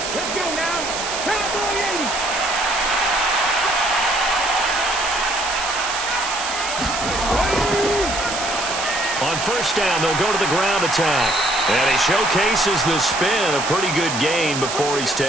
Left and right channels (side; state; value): right; noise; hiss, 5 dB below the sound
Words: Let's go now. Cowboy 80. On 1st down, they'll go to the ground attack. And he showcases the spin. A pretty good gain before he's